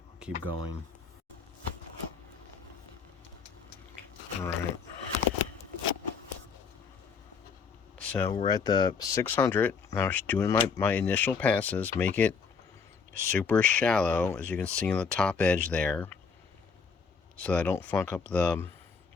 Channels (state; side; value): quieter; right; 5.6 dB